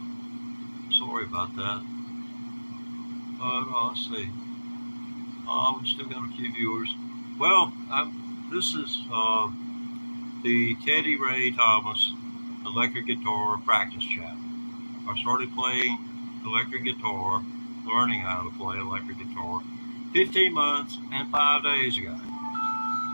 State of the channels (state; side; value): inverted; both; correlation -1.00